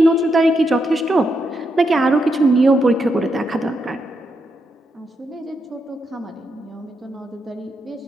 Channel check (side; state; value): both; normal; correlation 0.82